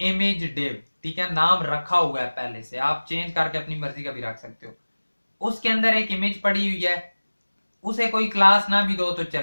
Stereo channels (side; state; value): both; inverted; correlation -1.00